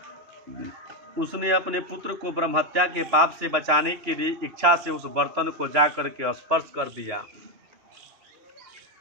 उसने अपने पुत्र को ब्रह्महत्या के पाप से बचाने के लिए इच्छा से उस बर्तन को जा करके स्पर्श कर दिया।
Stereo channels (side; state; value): left; late; 2.9 ms